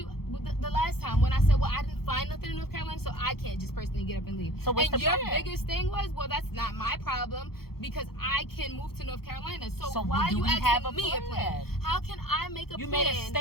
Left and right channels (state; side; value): late; right; 0.95 ms